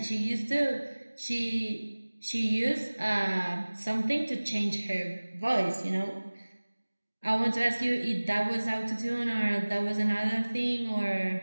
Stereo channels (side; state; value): both; inverted; correlation -1.00